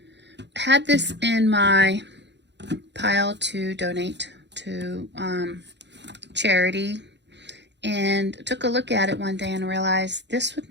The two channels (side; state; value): left; late; 0.51 ms